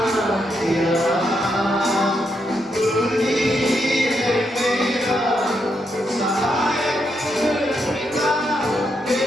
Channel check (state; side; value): normal; both; correlation 0.80